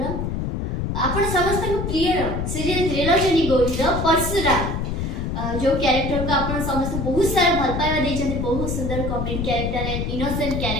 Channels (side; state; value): left; noise; rumble, 2 dB below the sound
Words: आपण समस्त प्रिय सीरियल त्रिलोचनी गौरीर परशुराम जो कैरेक्टर को आप समस्त बहुत सारा भल पाइबा देते बहुत सुंदर comedy character and innocent